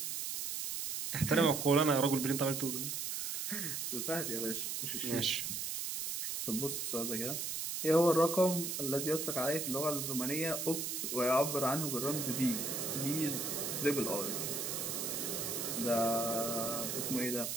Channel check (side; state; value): right; noise; hiss, 3 dB below the sound